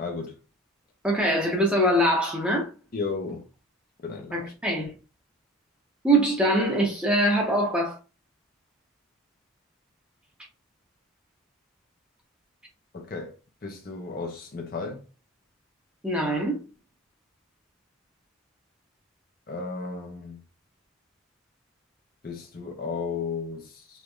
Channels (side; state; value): both; normal; correlation 0.37